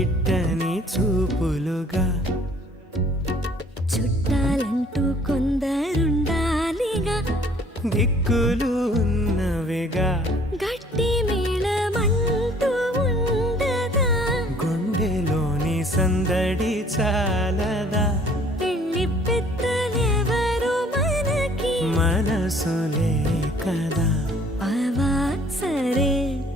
చూపులుగా చుట్టాలంటూ కొందరుండాలిగా దిక్కులు ఉన్నవిగా గట్టి మేళమంటూ ఉండదా గుండెలోని సందడి చాలదా పెళ్లి పెద్దలెవరు మనకి మనసులే కదా అవా సరే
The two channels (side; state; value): both; normal; correlation 0.57